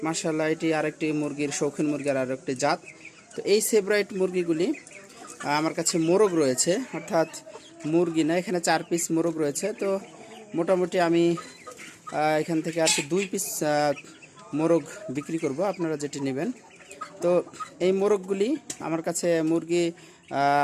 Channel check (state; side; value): identical; both; correlation 1.00